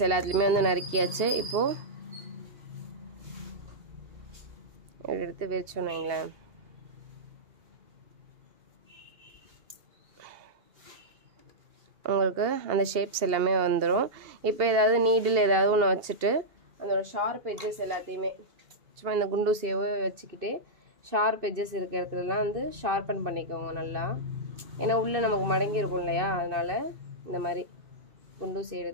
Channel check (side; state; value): left; late; 2.8 ms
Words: எல்லாத்துலேயுமே வந்து நறுக்கியாச்சு. இப்போது எடுத்து விரிச்சோன்னு வைங்களேன், உங்களுக்கு அந்த ஷேப்ஸ் எல்லாமே வந்துடும். இப்போ ஏதாவது நீடில் ஏதாவது ஒன்று வச்சுட்டு அதோட ஷார்ப் எட்ஜஸ் எல்லாத்தையுமே சும்மா இந்த குண்டூசியவை வச்சுக்கிட்டு ஷார்ப் எட்ஜஸ் இருக்கிற இடத்துலலாம் வந்து ஷார்பன் பண்ணிக்கோங்க நல்லா. ஏன்னா உள்ளே நமக்கு மடங்கி இருக்கும் இல்லையா, அதனால் இந்த மாதிரி குண்டூசி